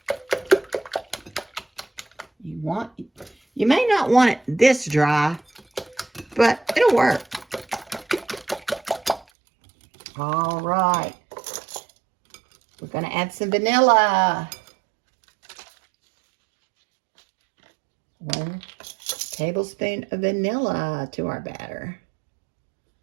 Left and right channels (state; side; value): drops out; left; at 9.2 s